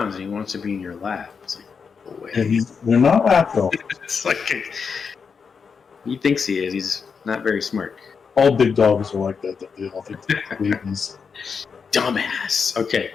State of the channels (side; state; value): right; quieter; 5.8 dB